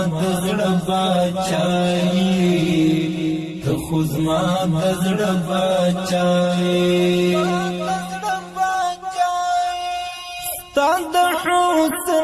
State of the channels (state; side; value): identical; both; correlation 1.00